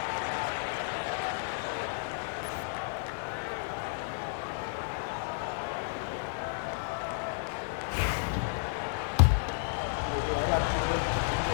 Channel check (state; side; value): silent; right; digital silence